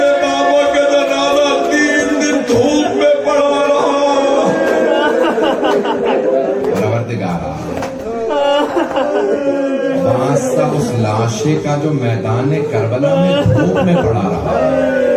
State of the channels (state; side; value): identical; both; correlation 1.00